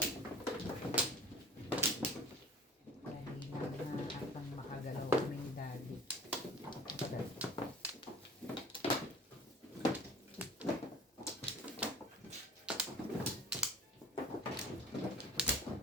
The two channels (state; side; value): normal; both; correlation 0.43